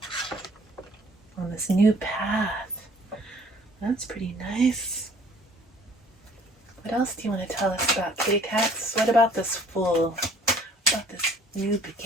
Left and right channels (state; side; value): normal; both; correlation 0.55